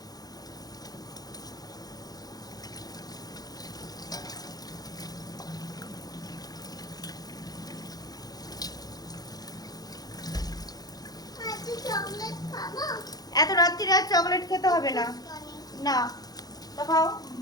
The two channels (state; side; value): late; right; 0.19 ms